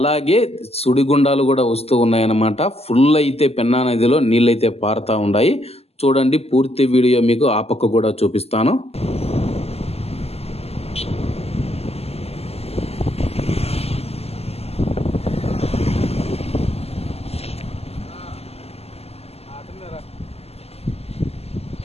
సుడిగుండాలు కూడా వస్తూ ఉన్నాయన్నమాట. ఫుల్ అయితే పెన్నా నదిలో నీళ్ళైతే పారుతూ ఉన్నాయి. చూడండి, పూర్తి వీడియో మీకు ఆ పక్క కూడా చూపిస్తాను.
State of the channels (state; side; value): late; right; 0.29 ms